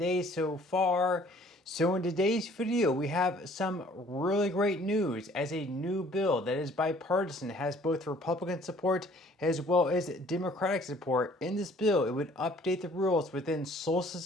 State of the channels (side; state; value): both; normal; correlation 0.56